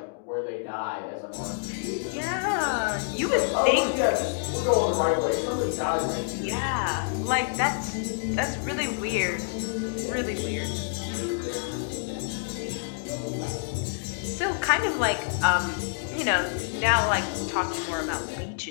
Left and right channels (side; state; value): right; silent; digital silence